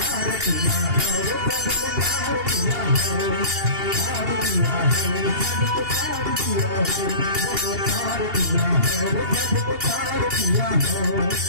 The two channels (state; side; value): late; left; 2.8 ms